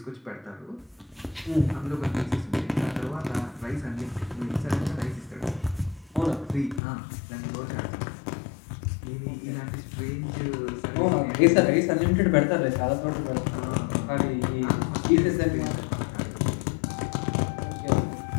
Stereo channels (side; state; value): right; drops out; at 6.8 s